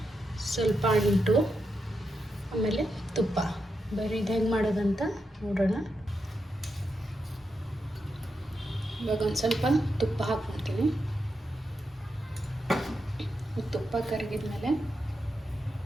ಸ್ವಲ್ಪ ಅಂಟು, ಆಮೇಲೆ ತುಪ್ಪ. ಬರೀ ಇದು ಹೆಂಗೆ ಮಾಡೋದಂತ ನೋಡೋಣ. ಇವಾಗ ಒಂದು ಸ್ವಲ್ಪ ತುಪ್ಪ ಹಾಕ್ಕೊಳ್ತೀನಿ. ತುಪ್ಪ ಕರಗಿದ್ಮೇಲೆ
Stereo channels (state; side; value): normal; both; correlation 0.86